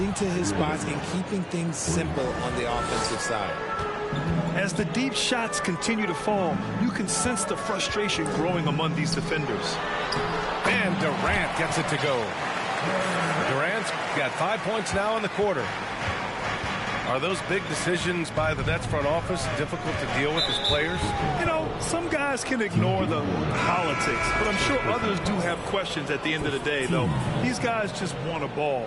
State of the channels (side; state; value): both; identical; correlation 1.00